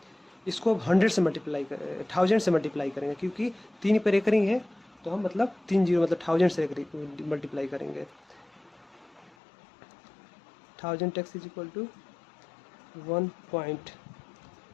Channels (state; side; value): drops out; right; at 9.3 s